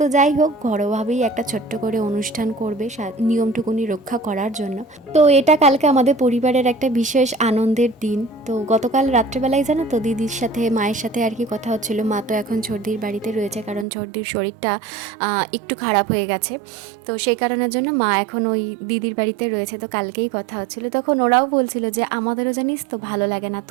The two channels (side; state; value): left; drops out; at 13.9 s